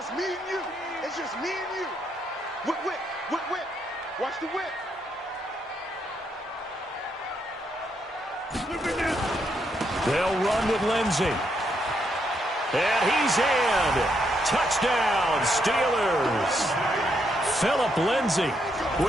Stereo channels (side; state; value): both; normal; correlation 0.77